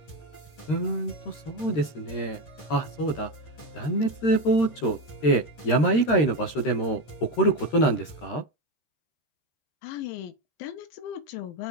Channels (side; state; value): right; late; 13 ms